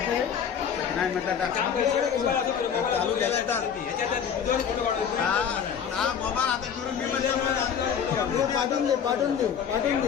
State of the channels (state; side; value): quieter; right; 7.7 dB